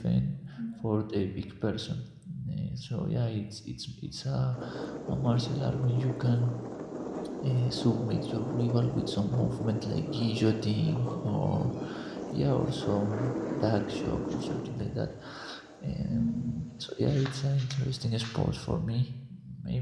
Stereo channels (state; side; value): identical; both; correlation 1.00